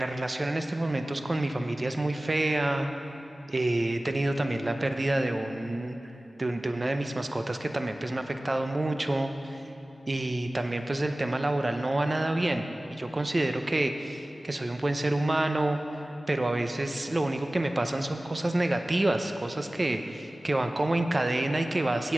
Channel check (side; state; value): both; normal; correlation 0.98